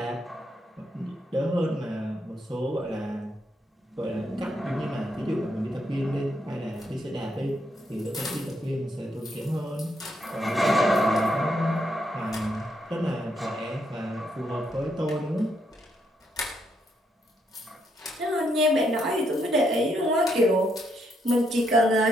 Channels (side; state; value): both; normal; correlation 0.77